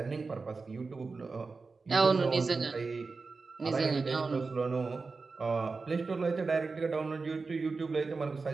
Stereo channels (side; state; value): left; quieter; 4.2 dB